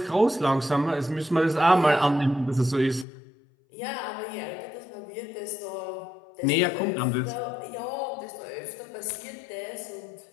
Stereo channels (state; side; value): drops out; right; at 3.1 s